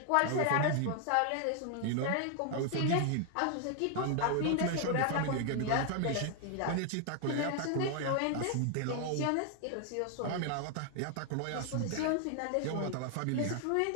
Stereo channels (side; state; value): both; different; correlation 0.00